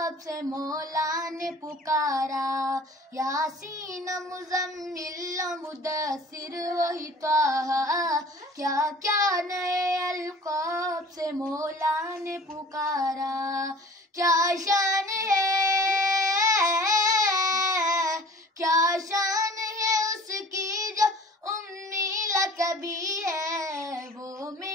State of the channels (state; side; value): normal; both; correlation 0.46